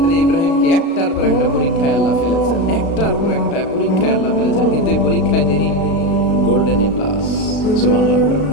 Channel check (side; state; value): right; late; 36 ms